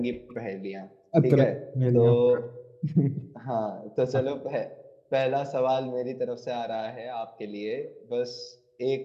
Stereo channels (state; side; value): identical; both; correlation 1.00